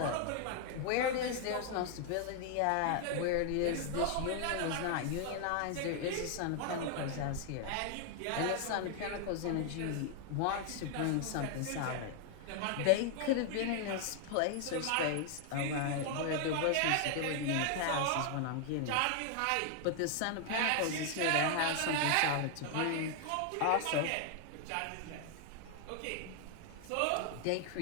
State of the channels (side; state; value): both; different; correlation 0.00